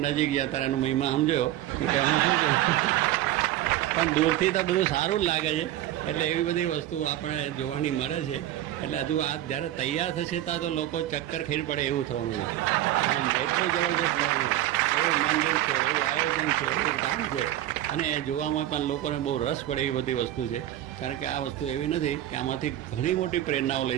નજીક ગયા તારે એનો મહિમા સમજ્યો કે હું શું કહું. પણ દૂરથી તો બધું સારું જ લાગે છે. એટલે એવી બધી વસ્તુ આપણે જોવાની મળે છે. એટલે હજુ આ જ્યારે તૈયાર થશે ત્યાં તો લોકો ચક્કર ખાઈ પડે એવું થવાનું છે. આમ એટલું જબરદસ્ત થવાનું. એવું મંદિર છે, એવું આયોજન છે, એવું કામ છે. અને એ જોવામાં પણ લોકોને બહુ રસ પડે એવી બધી વસ્તુ છે. કારણ કે આ વસ્તુ એવી નથી કે આમાંથી ઘણી મોટી પ્રેરણાઓ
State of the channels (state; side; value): quieter; left; 13.4 dB